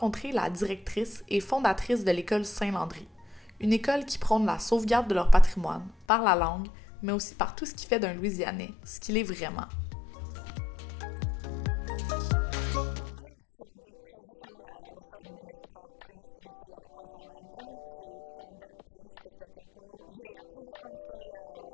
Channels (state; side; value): drops out; right; at 6.1 s